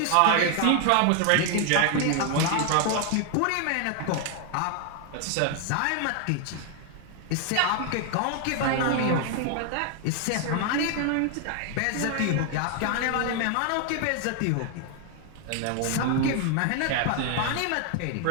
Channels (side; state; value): both; different; correlation 0.00